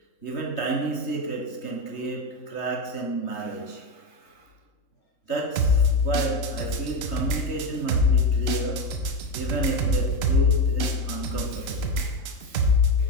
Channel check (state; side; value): late; right; 3.2 ms